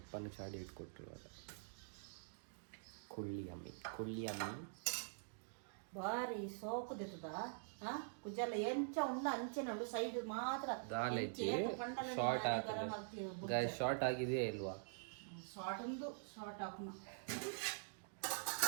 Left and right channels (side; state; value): left; silent; digital silence